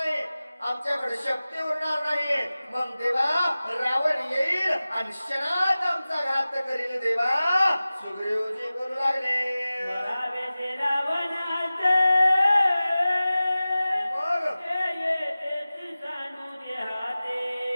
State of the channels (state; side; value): inverted; both; correlation -0.97